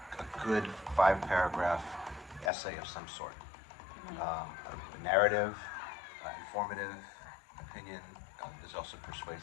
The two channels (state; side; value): drops out; right; at 2.5 s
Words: good 5-paragraph essay of some sort. A narrative, informative, opinion. Is also